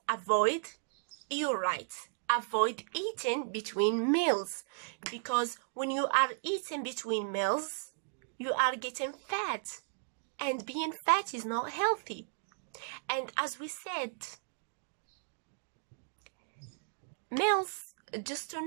avoid, you're right, avoid eating between meals, because when you are eating between meals, you are getting fat, and being fat is not healthy. And as we said, meals, just to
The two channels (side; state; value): left; silent; digital silence